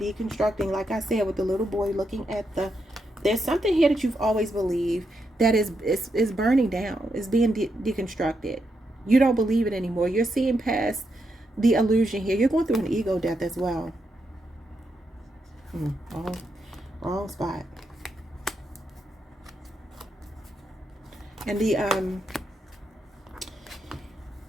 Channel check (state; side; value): normal; both; correlation 0.82